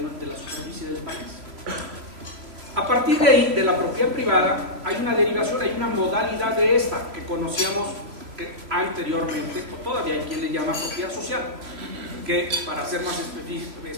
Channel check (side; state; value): left; late; 3.0 ms